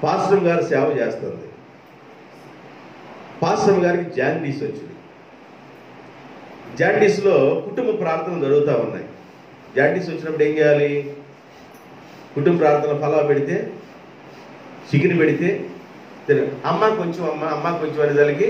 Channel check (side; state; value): both; identical; correlation 1.00